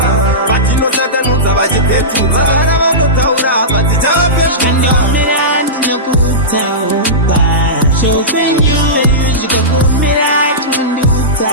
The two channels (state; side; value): normal; both; correlation -0.17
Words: Patino Satanuza, Vajipetuza, Taura, Patijapa, and your man, no good town. So when you go for me, I can do